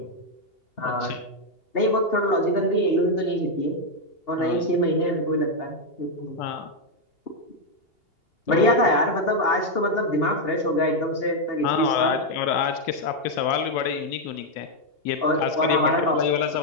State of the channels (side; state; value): right; late; 2.8 ms